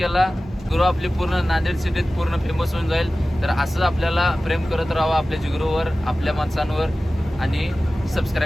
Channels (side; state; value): both; normal; correlation 0.96